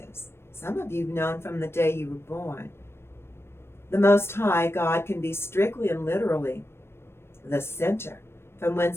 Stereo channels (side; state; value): right; late; 0.12 ms